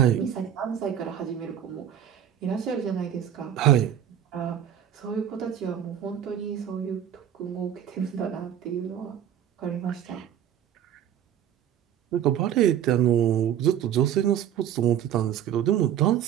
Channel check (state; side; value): quieter; left; 10.0 dB